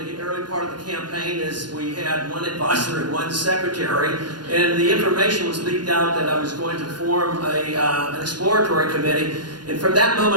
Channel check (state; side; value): late; left; 0.71 ms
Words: early part of the campaign is we had one advisor and one secretary, and the information was leaked out that I was going to form an exploratory committee, and from that